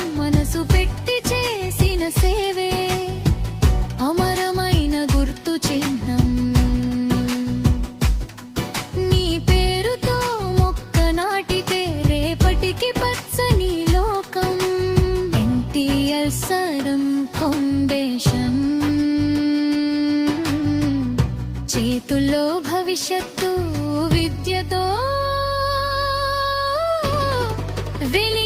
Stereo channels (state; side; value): identical; both; correlation 1.00